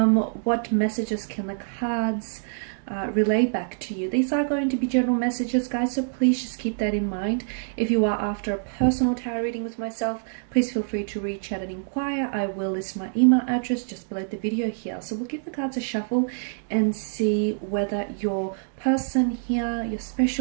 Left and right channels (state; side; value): silent; left; digital silence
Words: messages can the cards relay back to you? These are going to be general messages, guys, so please just keep that in mind. If you are after a personal tarot reading with myself, please feel free to reach out and inquire. I will list my email address just below the video here. So we'll give the cards a shuffle and see whether your person here, your